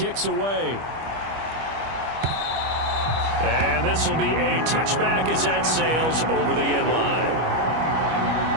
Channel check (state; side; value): late; left; 25 ms